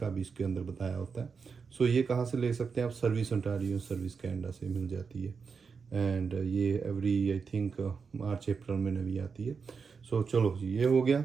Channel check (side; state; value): left; quieter; 5.5 dB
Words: भी इसके अंदर बताया होता है। सो ये कहाँ से ले सकते हैं आप, सर्विस ओंटारियो, सर्विस कैनेडा से मिल जाती है। एंड ये एवरी आई थिंक मार्च अप्रैल में नवी आती है। सो चलो जी, ये हो गया।